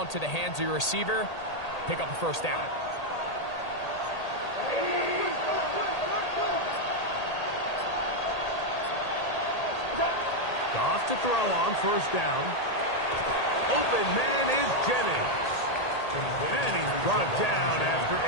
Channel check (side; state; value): right; late; 1.8 ms